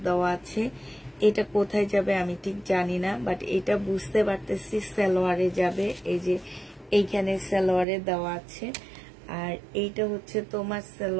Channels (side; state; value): left; drops out; at 7.9 s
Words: দেওয়া আছে, এটা কোথায় যাবে আমি ঠিক জানি না, বাট এটা বুঝতে পারতেছি সালোয়ারে যাবে। এই যে এইখানে সালোয়ারে দেওয়া আছে। আর এইটা হচ্ছে তোমার